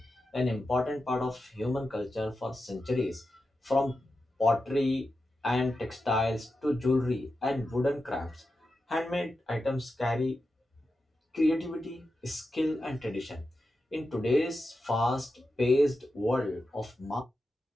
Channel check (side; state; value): both; normal; correlation 0.90